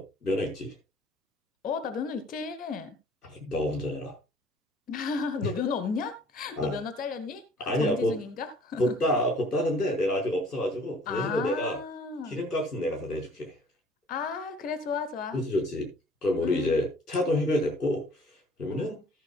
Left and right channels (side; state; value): both; normal; correlation 0.54